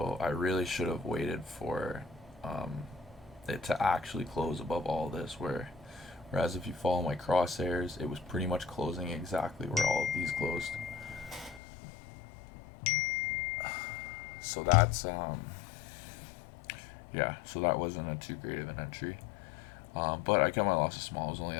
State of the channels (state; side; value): drops out; right; at 11.6 s